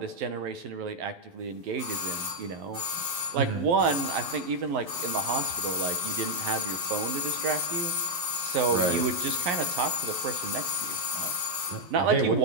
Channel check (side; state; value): left; late; 11 ms